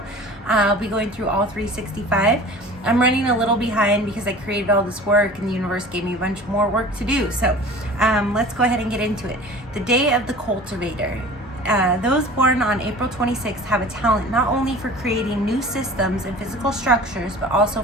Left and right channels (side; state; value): both; normal; correlation 0.42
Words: I'll be going through all 365. I'm running a little behind because I created all this work and the universe gave me a bunch more work to do. So let's go ahead and get into it. The day of the cultivator. Those born on April 26th have a talent not only for creating new systems and physical structures, but also